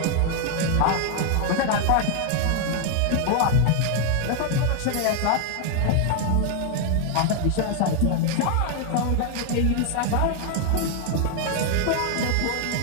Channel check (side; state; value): both; different; correlation 0.00